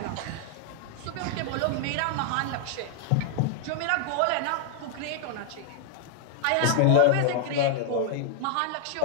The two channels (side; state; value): both; different; correlation -0.01